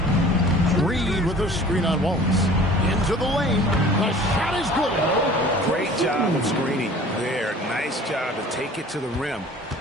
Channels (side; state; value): both; normal; correlation 0.47